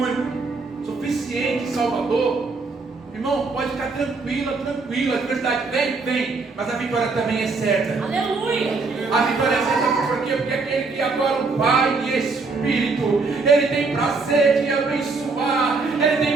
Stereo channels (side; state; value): left; quieter; 4.1 dB